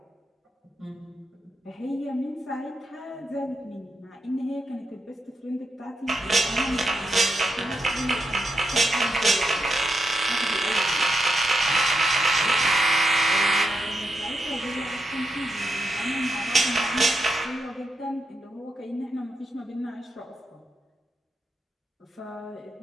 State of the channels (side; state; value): both; normal; correlation 0.84